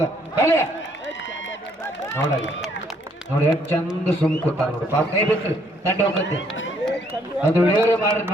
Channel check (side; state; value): both; normal; correlation 0.67